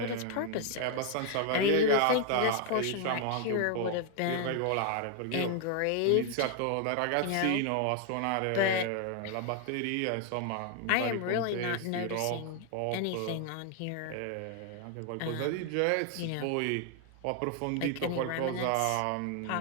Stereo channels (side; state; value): both; different; correlation 0.00